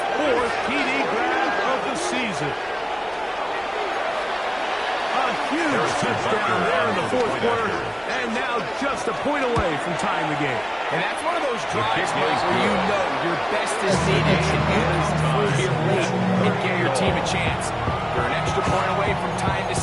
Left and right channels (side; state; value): both; identical; correlation 1.00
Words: fourth TD grab of the season. A huge touchdown there in the fourth quarter. And now just a point away from tying the game. And that's one of those drives, Mike, where you know your best is needed to get through here late and give your team a chance. They're an extra point away from tying this